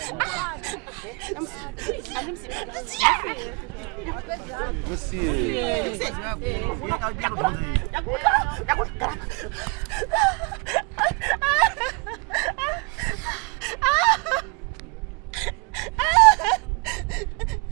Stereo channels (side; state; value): left; quieter; 32.6 dB